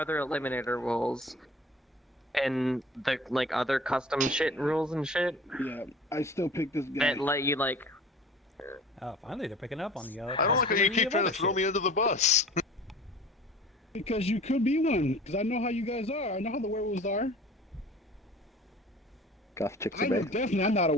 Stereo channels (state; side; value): normal; both; correlation 0.44